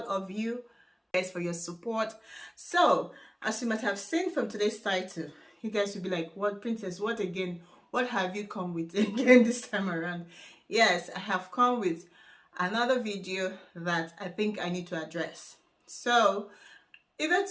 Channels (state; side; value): identical; both; correlation 1.00